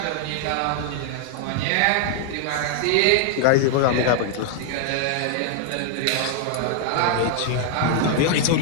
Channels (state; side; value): different; both; correlation 0.00